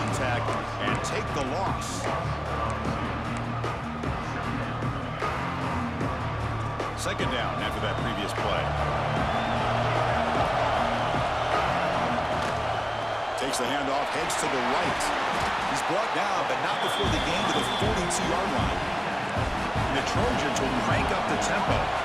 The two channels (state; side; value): identical; both; correlation 1.00